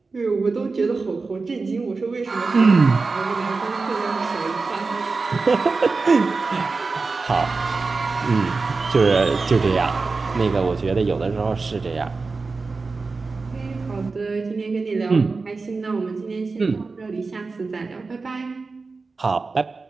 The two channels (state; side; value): quieter; left; 4.1 dB